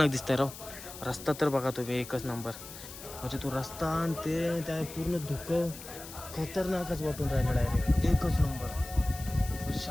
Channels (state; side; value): noise; left; hiss, 14 dB below the sound